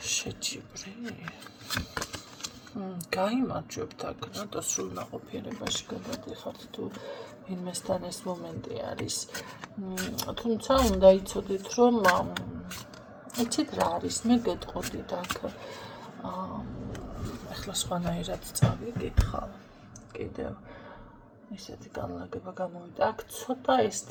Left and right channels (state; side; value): identical; both; correlation 1.00